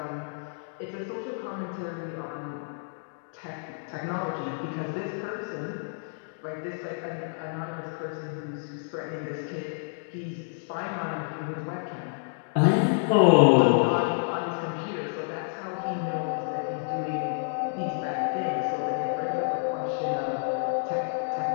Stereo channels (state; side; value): silent; right; digital silence